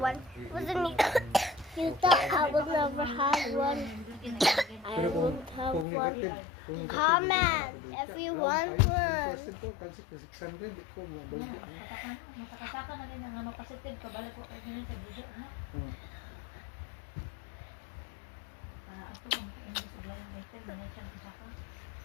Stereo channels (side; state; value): right; drops out; at 5.9 s